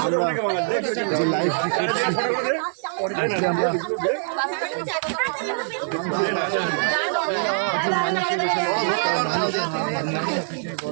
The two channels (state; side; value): silent; left; digital silence